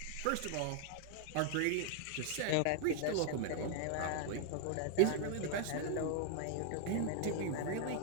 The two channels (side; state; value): both; different; correlation 0.00